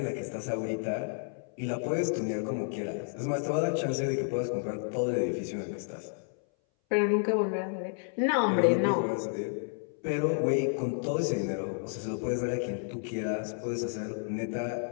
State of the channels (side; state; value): right; silent; 57 dB below the other